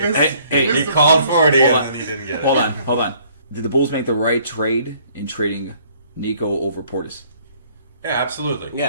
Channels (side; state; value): both; inverted; correlation -0.61